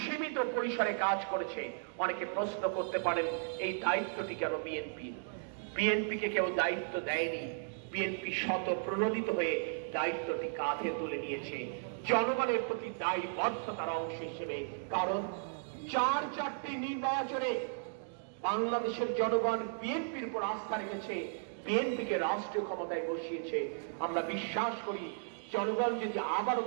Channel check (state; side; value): silent; left; digital silence